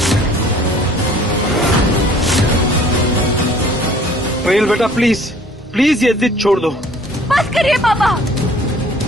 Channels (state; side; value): normal; both; correlation 0.53